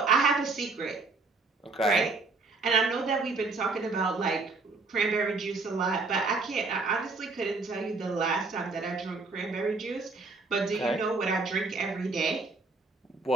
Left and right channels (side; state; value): left; quieter; 3.9 dB